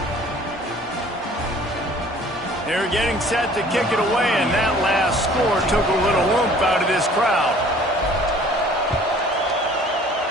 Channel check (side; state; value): both; normal; correlation 0.52